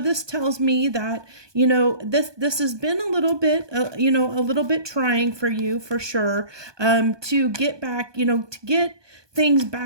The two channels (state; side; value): late; left; 1.2 ms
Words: tells me that, this has been a little bit, a little bit trying for you for sure, to get back, to get things